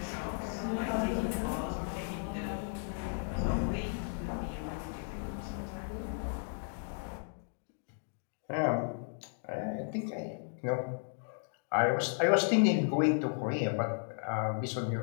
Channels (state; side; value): silent; right; digital silence